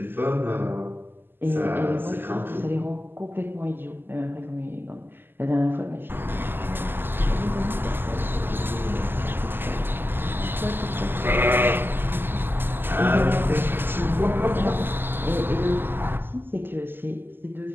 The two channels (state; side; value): late; left; 0.097 ms